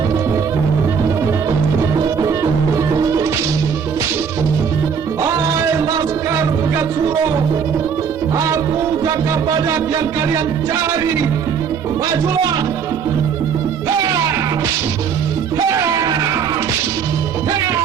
Hai Laskar Pegat Suro, aku Jaka Badak yang kalian cari. Majulah!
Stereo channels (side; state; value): left; quieter; 6.7 dB